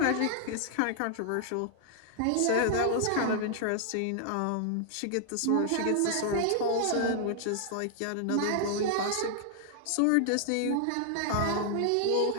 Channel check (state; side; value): different; both; correlation -0.01